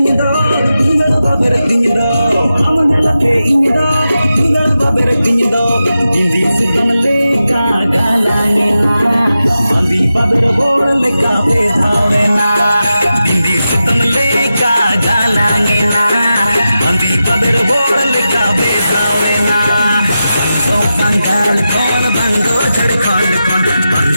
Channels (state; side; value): inverted; both; correlation -0.91